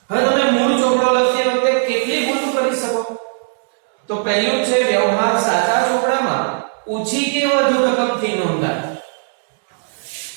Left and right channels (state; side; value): silent; left; digital silence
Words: હવે તમે મૂળ ચોપડો લખતી વખતે કેટલી ભૂલો કરી શકો? તો પહેલું છે વ્યવહાર સાચા ચોપડામાં ઓછી કે વધુ રકમથી નોંધાય.